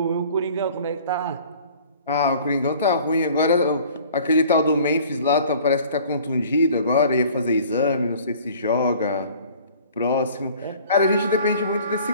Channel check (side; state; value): both; inverted; correlation -0.50